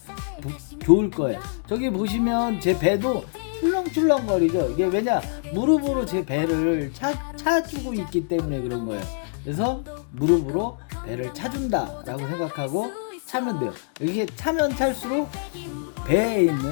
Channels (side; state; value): right; silent; digital silence